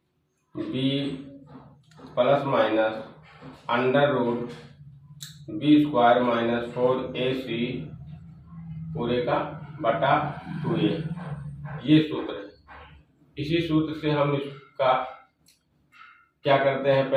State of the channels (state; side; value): identical; both; correlation 1.00